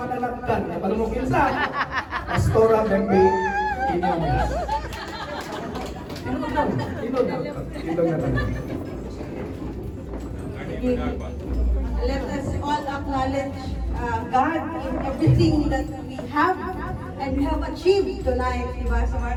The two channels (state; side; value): identical; both; correlation 1.00